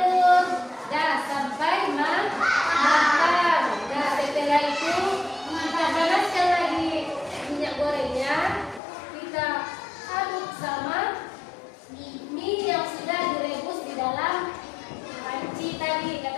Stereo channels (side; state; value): right; drops out; at 8.8 s